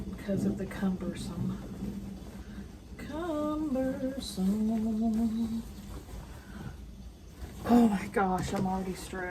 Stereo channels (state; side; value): identical; both; correlation 1.00